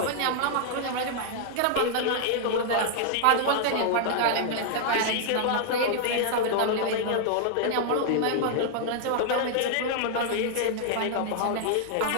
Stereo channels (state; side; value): different; both; correlation 0.00